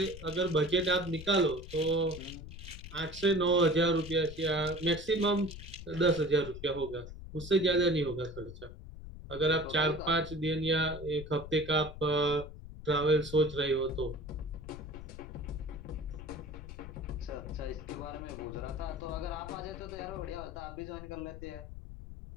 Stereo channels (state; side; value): noise; left; rumble, 12 dB below the sound